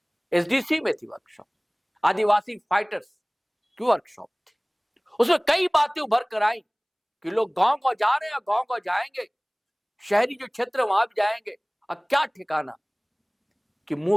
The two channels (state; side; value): identical; both; correlation 1.00